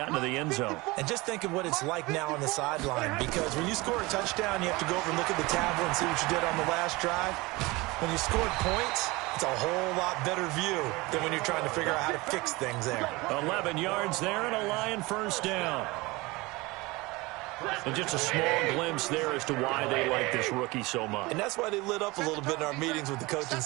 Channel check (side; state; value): left; quieter; 22.8 dB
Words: into the end zone. And just think of what it's like now on the sideline, because when you score a touchdown, you have to go over and look at the tablet and see what you did on the last drive. When you scored points, it's a whole lot better view than when you're trying to figure out how to fix things there. 11 yards there and a Lion first down. And just a small glimpse there as to why they like this rookie so much. And that's why they lit up a little bit in our meetings with the coaching